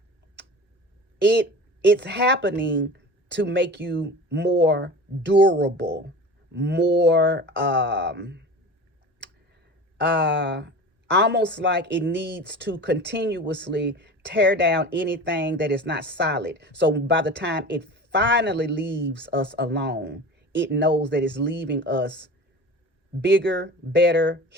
it's happening to make you more durable, more almost like it needs to continuously tear down anything that is not solid. So by the time it finally leaves us alone, it knows that it's leaving us bigger, better,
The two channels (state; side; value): normal; both; correlation 0.35